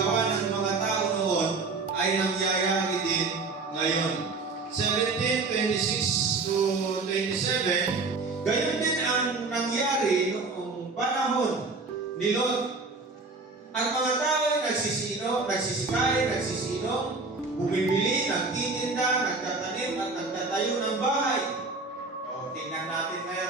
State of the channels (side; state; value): left; quieter; 3.8 dB